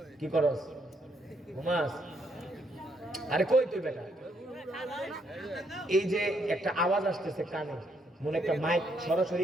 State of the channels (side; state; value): both; normal; correlation 0.73